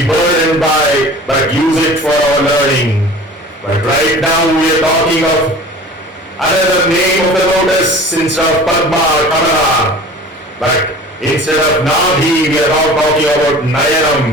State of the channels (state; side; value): normal; both; correlation 0.41